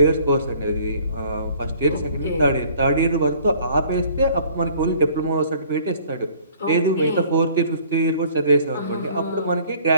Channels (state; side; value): inverted; both; correlation -0.55